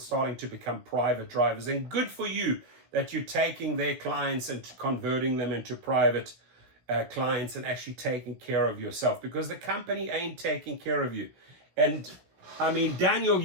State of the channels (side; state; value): left; late; 17 ms